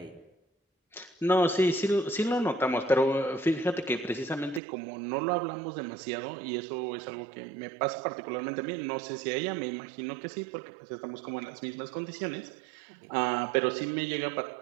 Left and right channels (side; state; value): left; drops out; at 4.6 s